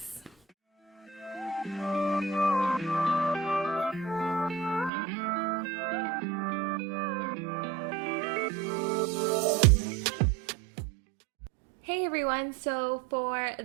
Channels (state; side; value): drops out; left; at 4.9 s